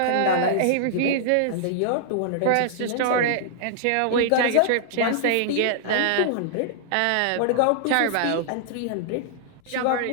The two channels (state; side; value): different; both; correlation -0.01